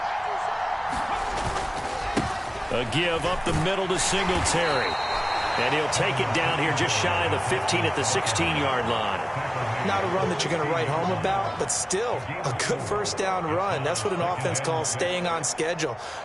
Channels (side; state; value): both; identical; correlation 1.00